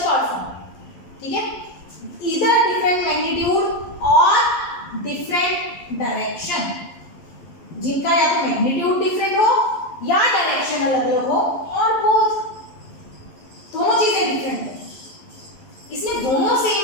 फॉर्म, ठीक है, either different magnitude or different जिनका या तो मैग्नीट्यूड डिफरेंट हो या डायरेक्शन अलग अलग हो और बोथ दोनों चीजें डिफरेंट है। इसमें दोनों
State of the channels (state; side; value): late; right; 11 ms